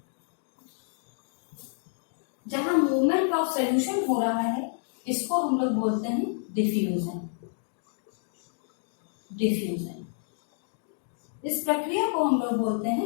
मूवमेंट ऑफ सोल्यूशन हो रहा है, इसको हम लोग बोलते हैं डिफ्यूजन। डिफ्यूजन, इस प्रक्रिया को हम लोग बोलते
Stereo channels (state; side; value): silent; right; 59 dB below the other